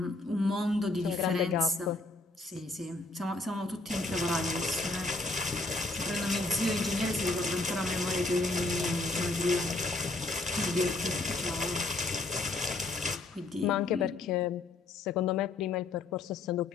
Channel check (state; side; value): quieter; right; 3.2 dB